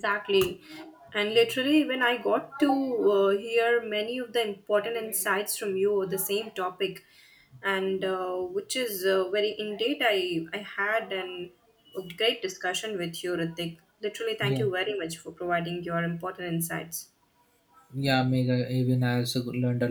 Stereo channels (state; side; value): identical; both; correlation 1.00